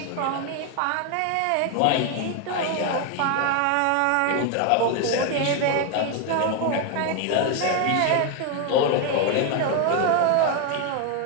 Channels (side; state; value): both; different; correlation 0.01